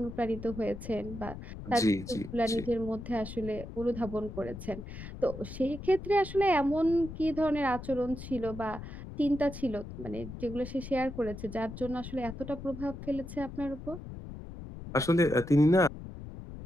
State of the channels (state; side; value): noise; left; rumble, 11 dB below the sound